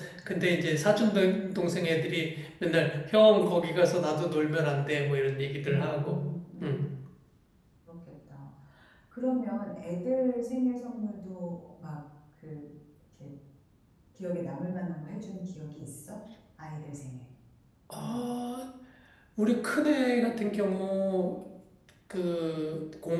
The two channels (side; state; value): both; identical; correlation 1.00